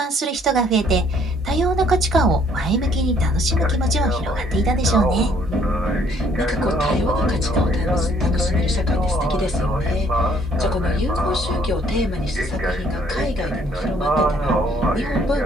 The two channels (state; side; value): normal; both; correlation 0.63